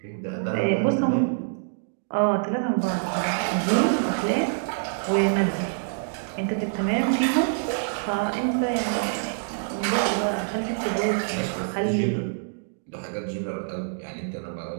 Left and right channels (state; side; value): silent; left; digital silence